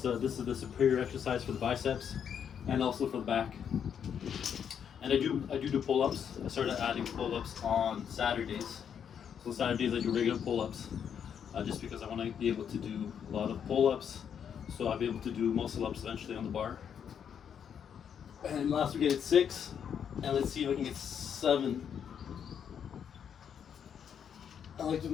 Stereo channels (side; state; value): right; quieter; 8.1 dB